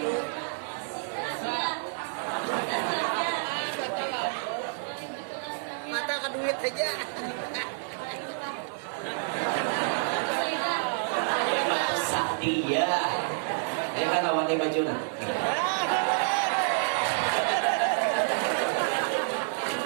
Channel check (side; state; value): left; silent; digital silence